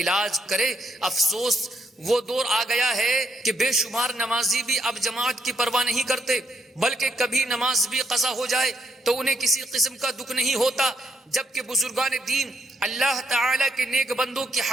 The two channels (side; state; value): both; normal; correlation 0.75